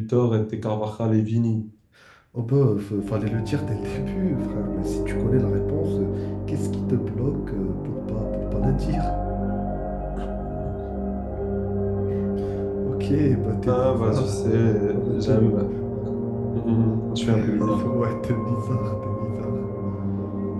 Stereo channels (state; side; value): identical; both; correlation 1.00